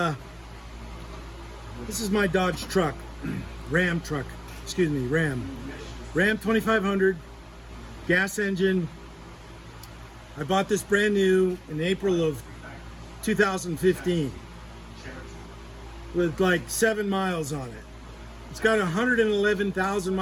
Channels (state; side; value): identical; both; correlation 1.00